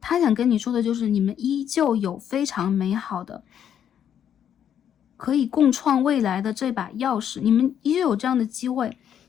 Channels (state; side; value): quieter; right; 9.2 dB